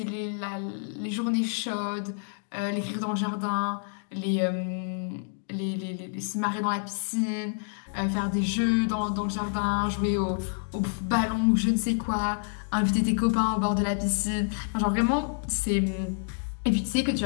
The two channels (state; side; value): silent; right; digital silence